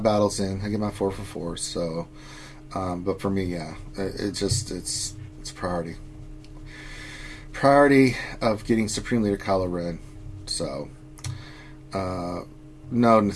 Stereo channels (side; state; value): both; identical; correlation 1.00